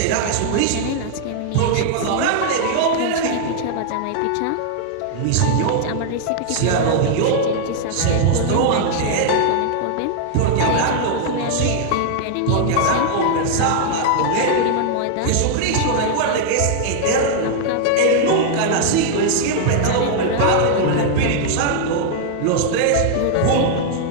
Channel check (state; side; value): different; both; correlation 0.00